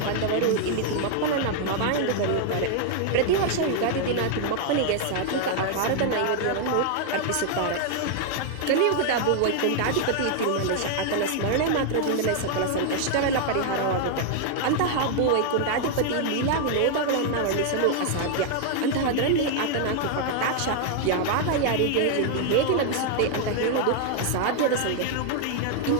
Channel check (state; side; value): different; both; correlation 0.00